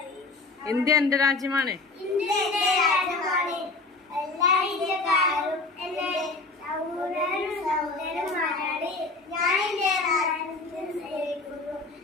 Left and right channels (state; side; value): quieter; right; 3.4 dB